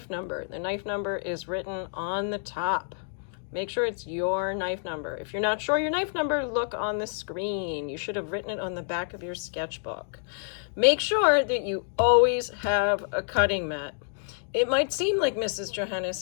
number. The knife number is written on the top. Make sure it's your knife number. If you're not sure your knife number, look on the screen. You should have written it on the back of your sketchbook. Make sure that you always have a cutting mat. It might seem like Mrs.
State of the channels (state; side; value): silent; right; digital silence